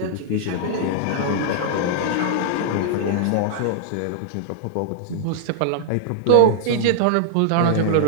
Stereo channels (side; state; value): both; different; correlation -0.01